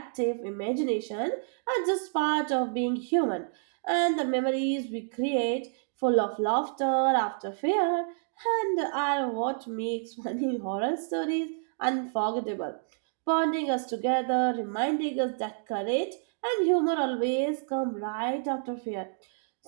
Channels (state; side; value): silent; left; digital silence